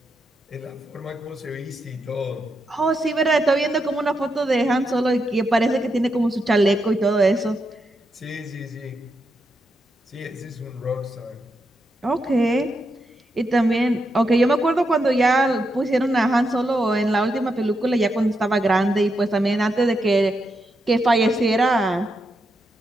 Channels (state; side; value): normal; both; correlation 0.83